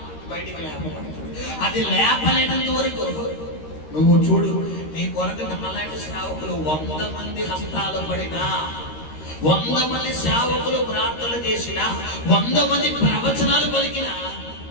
బయటికి లేపబడుతుంది. అది లేపలేనంత వరకు నువ్వు చూడు, నీ కొరకు నమ్మలాంటి సేవకులు 100 మంది హస్తాలు పడినా, 100 మంది సేవకులు ప్రార్థనలు చేసిన, 100 మంది ప్రవచనాలు పలికిన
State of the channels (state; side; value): late; right; 13 ms